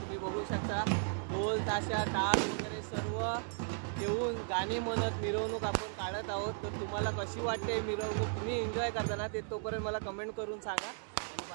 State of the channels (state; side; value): silent; left; 54 dB below the other